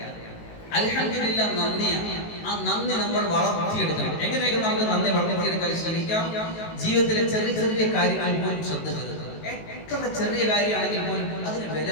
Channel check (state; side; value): late; right; 18 ms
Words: അൽഹംദുലില്ലാഹ് നന്ദിയാണ്. ആ നന്ദി നമ്മൾ വളർത്തിയെടുക്കണം. എങ്ങനെയൊക്കെ നമുക്ക് നന്ദി വളർത്തിയെടുക്കാൻ ശ്രമിക്കാം? ജീവിതത്തിലെ ചെറിയ ചെറിയ കാര്യങ്ങൾ പോലും ശ്രദ്ധ ചെലുത്തുക. എത്ര ചെറിയ കാര്യമാണെങ്കിൽ പോലും അതിന് വില